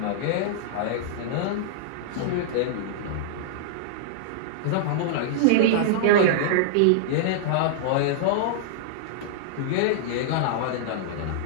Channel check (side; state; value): both; different; correlation -0.01